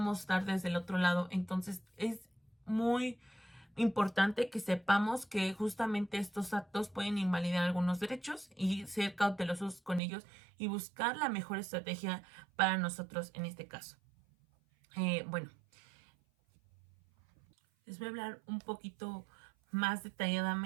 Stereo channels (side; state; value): left; drops out; at 10.0 s